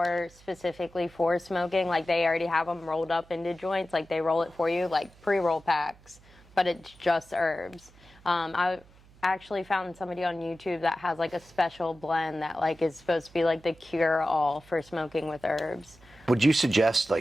specifically for smoking. Like, they already have them rolled up into joints. Like, they roll it for you, like pre-roll packs, but it's just herbs. I actually found somebody on YouTube that has, like, a special blend that, like, is supposed to be, like, the cure-all for smoking with herbs. Would you suggest,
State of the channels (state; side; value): noise; right; hum, 26 dB below the sound